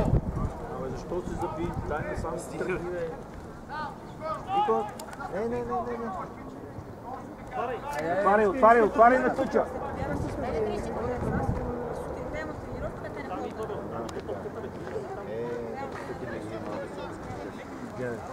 Абе, защо се заби? Дай не сам си тръгни, бе. Вико! Не. Отваряй на тъча!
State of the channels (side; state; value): both; identical; correlation 1.00